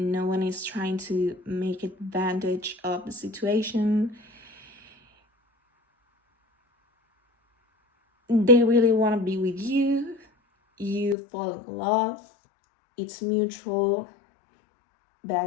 one is trying to make advantage of the situation. They really want to be with you. You fall in love. It's mutual,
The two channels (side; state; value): right; drops out; at 11.2 s